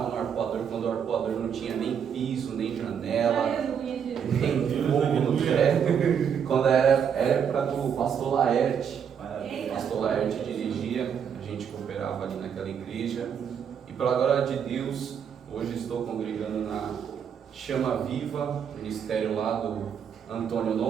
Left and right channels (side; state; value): left; quieter; 7.7 dB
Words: no Arpoador quando o Arpoador não tinha nem piso, nem janela, nem fogo no teto, quando era época do pastor Laerte. O pastor Laerte dirigia, a gente cooperava ali naquela igreja, e pela glória de Deus, hoje estou congregando na Chama Viva, ministério lá do Antônio